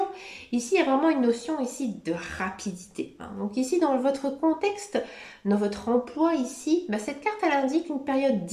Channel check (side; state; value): both; identical; correlation 1.00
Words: Ici, il y a vraiment une notion ici de rapidité. Donc ici, dans votre contexte, dans votre emploi ici, cette carte, elle indique une période